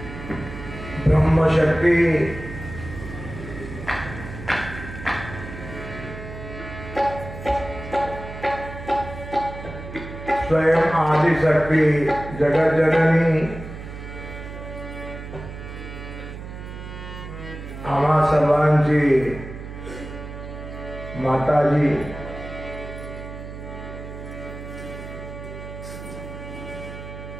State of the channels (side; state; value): right; noise; hum, 11 dB below the sound